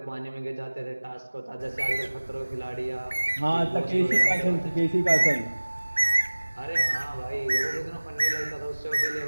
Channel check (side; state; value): both; inverted; correlation -1.00